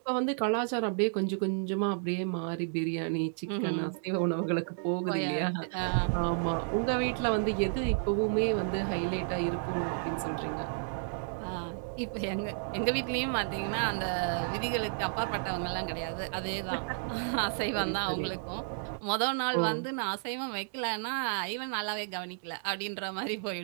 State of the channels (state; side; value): silent; left; digital silence